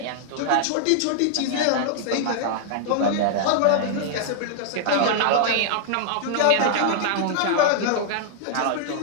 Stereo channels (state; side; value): different; both; correlation -0.01